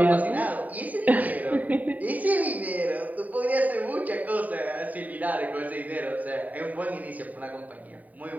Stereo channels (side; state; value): left; late; 0.074 ms